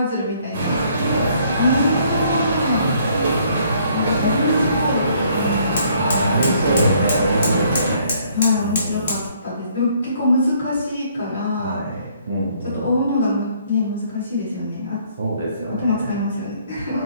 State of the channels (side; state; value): both; inverted; correlation -0.64